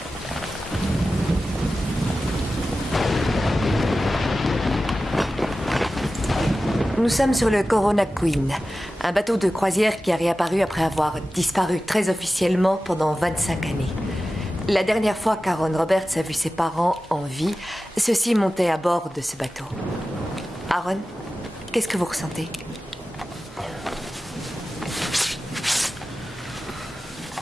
Nous sommes sur le Corona Queen, un bateau de croisière qui a réapparu après avoir disparu très officiellement pendant 25 années. La dernière fois qu'Aaron Roberts a vu ses parents en vie, ceux-ci montaient à bord de ce bateau. Aaron, qu'est-ce que vous ressentez?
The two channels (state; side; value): normal; both; correlation 0.94